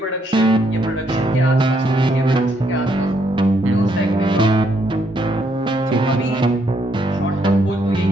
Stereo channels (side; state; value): both; normal; correlation 0.73